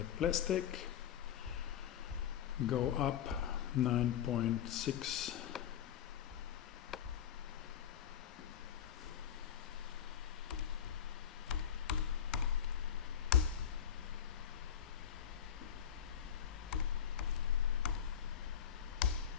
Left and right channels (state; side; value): quieter; right; 9.0 dB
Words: plastic. Go up 9.6